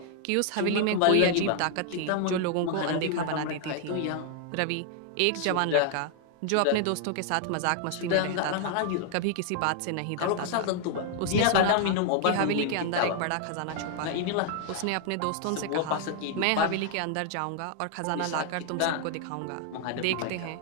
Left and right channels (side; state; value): both; different; correlation 0.00